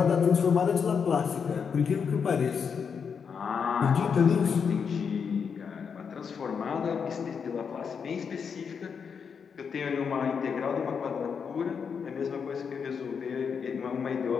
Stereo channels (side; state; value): right; quieter; 6.4 dB